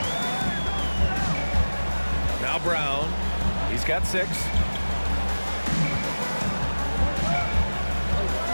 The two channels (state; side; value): inverted; both; correlation -1.00